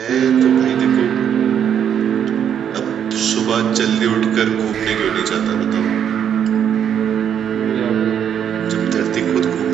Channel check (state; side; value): quieter; left; 8.8 dB